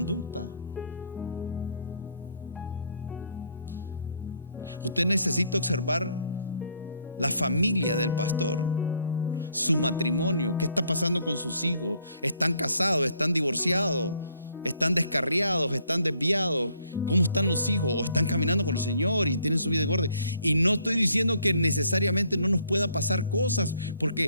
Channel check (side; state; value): both; inverted; correlation -0.66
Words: Usted necesita observar la familia del pastor, su matrimonio, qué está pasando con sus hijos. ¿Están casados? ¿Están divorciados? ¿Están descarriados? ¿Están desviados? ¿Cómo están los hijos? ¿O están caminando con el Señor y tienen su vida en orden? Y no estoy diciendo que necesariamente no nos pueda pasar cosas,